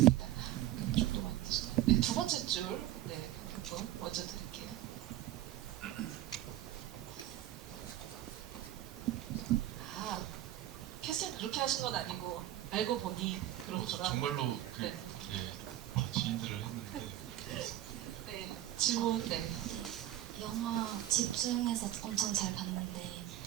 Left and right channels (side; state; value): left; quieter; 13.4 dB